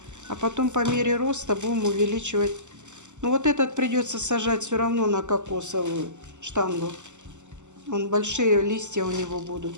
А потом по мере роста будем увеличивать. Ну вот этот придется сажать все равно на кокосовую штангу. Он большие листья у него будут.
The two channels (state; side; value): late; left; 0.84 ms